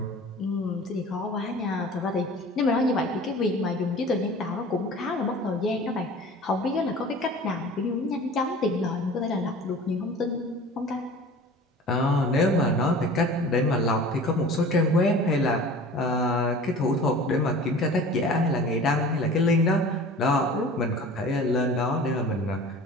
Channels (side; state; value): both; normal; correlation 0.41